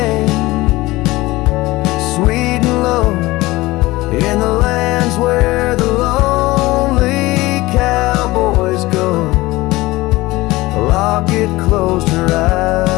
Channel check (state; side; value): quieter; right; 19.7 dB